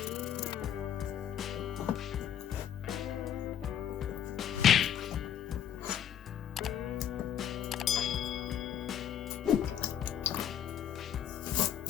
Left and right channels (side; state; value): right; quieter; 9.7 dB